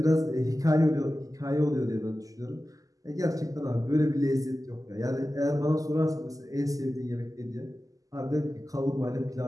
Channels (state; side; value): late; left; 0.17 ms